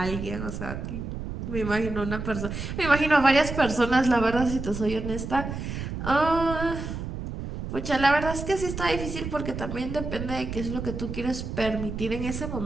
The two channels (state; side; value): noise; right; rumble, 6 dB below the sound